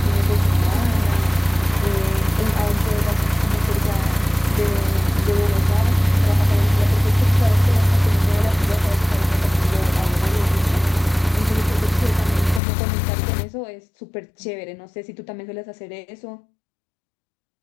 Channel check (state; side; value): drops out; right; at 12.6 s